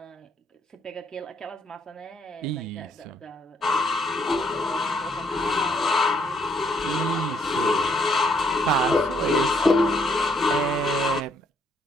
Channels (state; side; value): normal; both; correlation 0.70